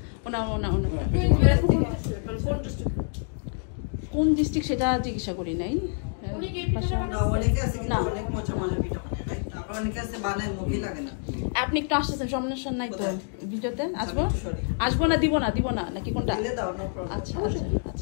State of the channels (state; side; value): silent; right; 60 dB below the other